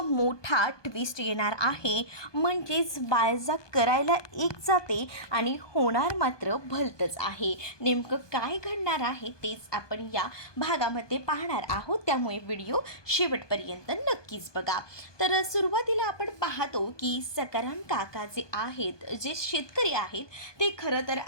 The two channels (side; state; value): right; late; 1.2 ms